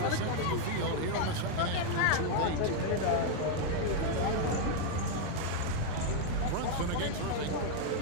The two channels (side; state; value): both; different; correlation 0.00